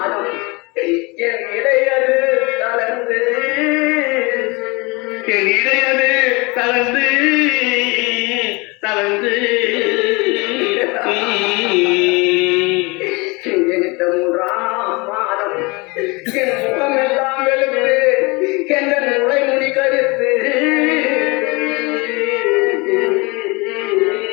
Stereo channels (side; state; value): right; quieter; 26.7 dB